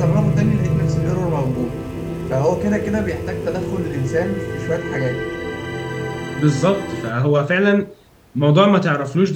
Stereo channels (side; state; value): both; identical; correlation 1.00